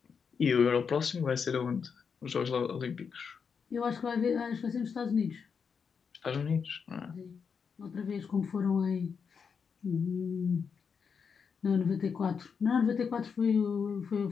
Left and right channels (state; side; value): quieter; right; 6.2 dB